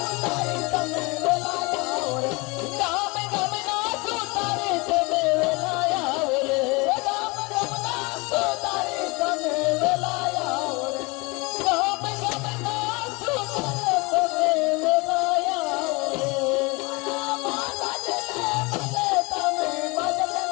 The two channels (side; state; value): right; quieter; 26.7 dB